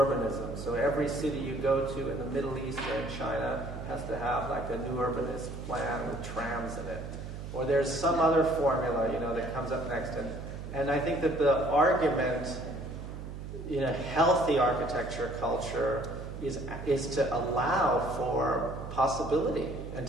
So every city you go to in the Middle East or in China has to have like a new urbanist plan with trams in it. Or there's some other formula, that comes up next. And I think that the argument healthy architecture culture is to allow for possibility and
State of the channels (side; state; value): right; noise; hum, 9 dB below the sound